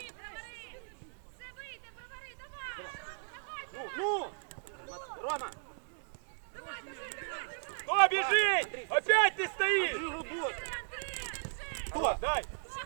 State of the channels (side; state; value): left; silent; digital silence